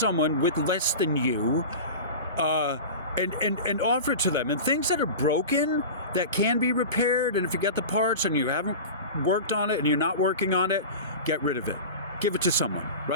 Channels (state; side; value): inverted; both; correlation -0.31